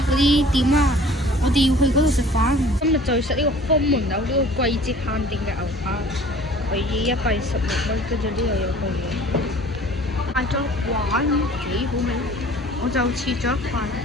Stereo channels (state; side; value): normal; both; correlation 0.49